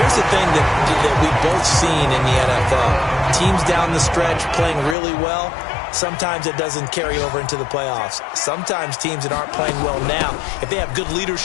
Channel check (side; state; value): right; drops out; at 5.0 s